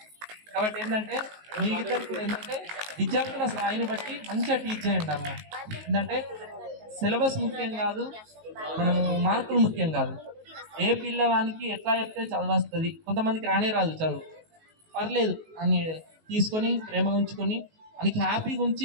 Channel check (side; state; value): left; late; 19 ms